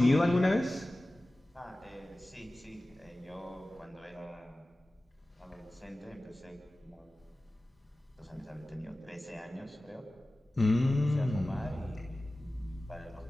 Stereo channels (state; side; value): normal; both; correlation 0.96